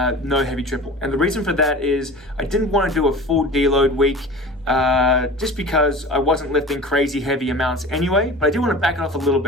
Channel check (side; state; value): left; noise; hum, 29 dB below the sound